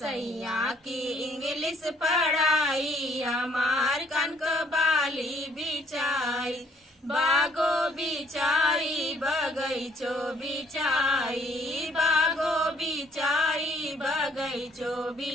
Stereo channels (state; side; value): normal; both; correlation 0.63